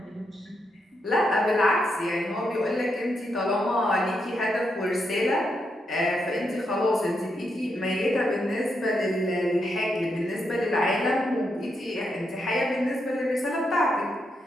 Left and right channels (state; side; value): normal; both; correlation 0.82